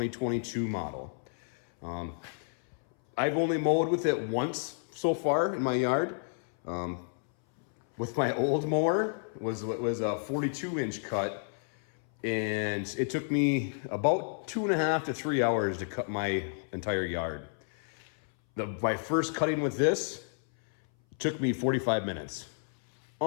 model. I've only mowed with it once so far in my yard. With my old mower, it was a 42-inch cut, and it took me about 2.5 to 3 hours to cut my entire yard. My first cutting with this took me 45 minutes.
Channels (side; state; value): right; silent; 57 dB below the other